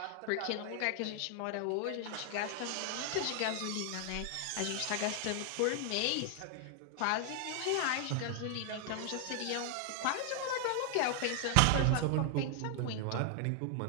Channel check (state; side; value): different; both; correlation 0.00